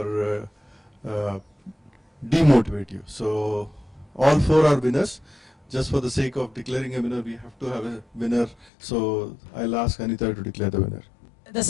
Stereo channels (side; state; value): right; drops out; at 8.7 s